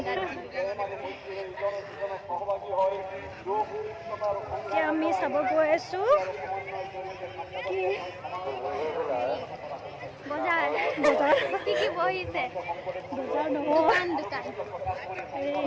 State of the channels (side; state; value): both; identical; correlation 1.00